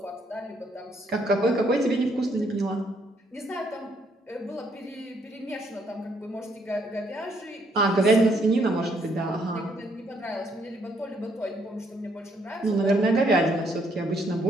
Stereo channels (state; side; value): normal; both; correlation 0.70